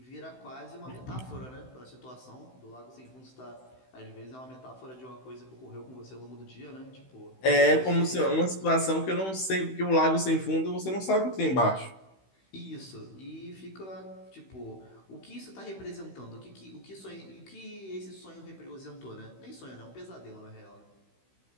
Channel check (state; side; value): late; right; 16 ms